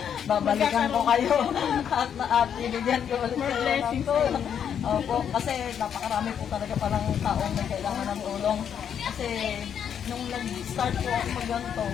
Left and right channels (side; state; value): right; quieter; 8.4 dB